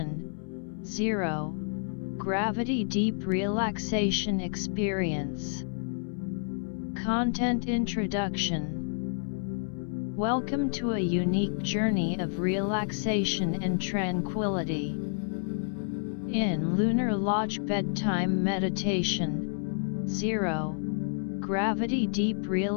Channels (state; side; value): silent; right; 58 dB below the other